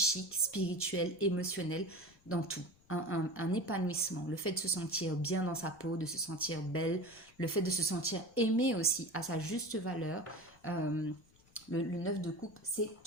spirituel, émotionnel, dans tout. Un épanouissement, le fait de se sentir bien dans sa peau, de se sentir belle, le fait de se sentir aimé aussi à sa juste valeur. Le 9 de coupe, c'est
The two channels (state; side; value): noise; left; rumble, 29 dB below the sound